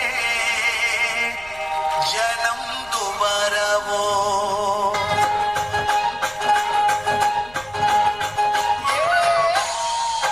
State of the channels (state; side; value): noise; left; rumble, 24 dB below the sound